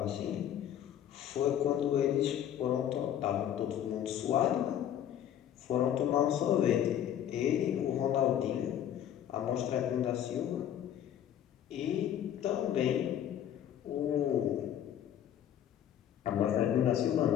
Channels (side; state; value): right; quieter; 10.3 dB